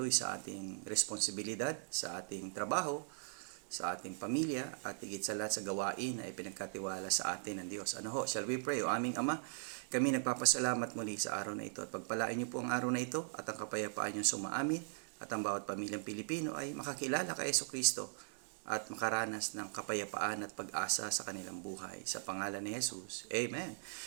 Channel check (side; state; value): left; silent; digital silence